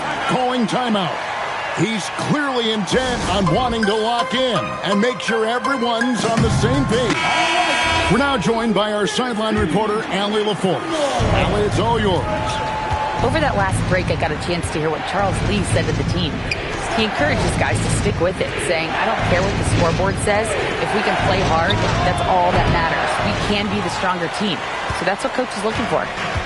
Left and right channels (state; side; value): identical; both; correlation 1.00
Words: calling timeout. He's clearly intent on wanting to lock in and make sure everyone's on the same page. We're now joined by our sideline reporter, Allie LaForce. Allie, it's all yours. Over that last break, I got a chance to hear what Charles Lee said to the team. He encourages guys to stick with it, saying, I don't care what the scoreboard says. If we can play hard, that's all that matters. We can be the stronger team. So that's what Coach is looking for.